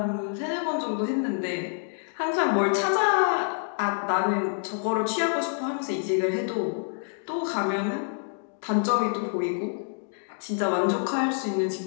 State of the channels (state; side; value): silent; right; digital silence